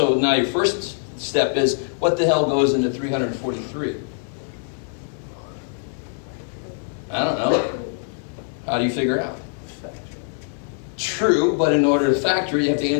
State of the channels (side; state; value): right; silent; 64 dB below the other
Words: now your first step is, what the hell goes into 343? I don't know. How do you figure it out? True, but in order to factor it, you have to